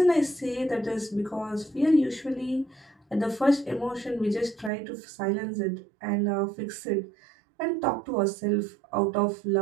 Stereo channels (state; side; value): drops out; left; at 4.7 s